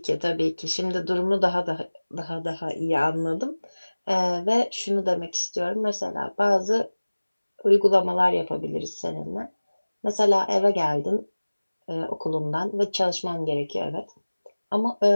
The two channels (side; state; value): both; inverted; correlation -1.00